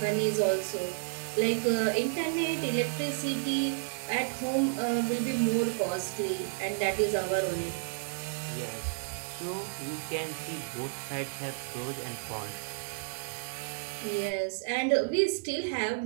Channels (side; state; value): left; silent; digital silence